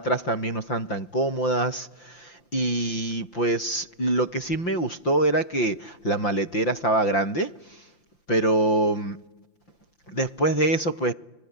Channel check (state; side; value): late; right; 5.8 ms